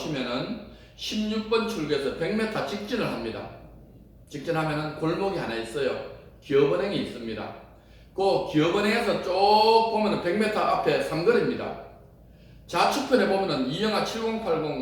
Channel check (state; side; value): identical; both; correlation 1.00